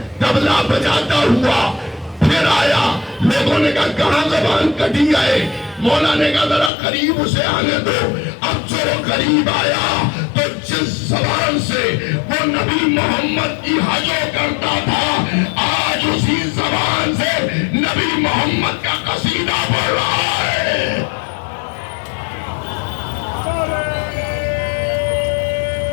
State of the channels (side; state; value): right; drops out; at 6.7 s